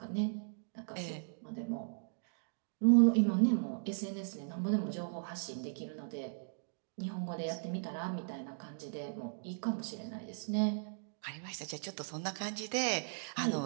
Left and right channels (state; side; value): silent; left; digital silence